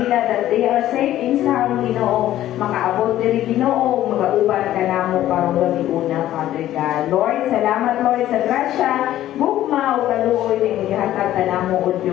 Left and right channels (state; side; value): quieter; right; 13.3 dB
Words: that they are safe and sound Ginoo. Makaabot diri Ginoo magauban kanamo karong gabi una, Father God. Lord, salamat Lord sa grasya, gugma o kaluoy ning gihatag kanamo o